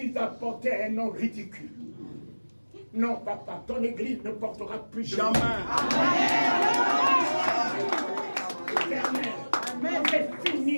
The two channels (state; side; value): inverted; both; correlation -1.00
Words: a porté un nom ridicule. Non, papa, ton Église ne portera plus jamais. Amen. C'est